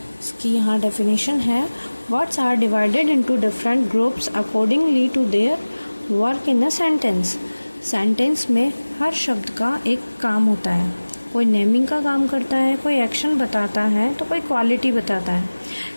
इसकी यहाँ डेफिनेशन है। Words are divided into different groups accordingly to their work in a sentence. Sentence में हर शब्द का एक काम होता है। कोई नेमिंग का काम करता है, कोई एक्शन बताता है, तो कोई क्वालिटी बताता है।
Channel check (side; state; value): both; inverted; correlation -1.00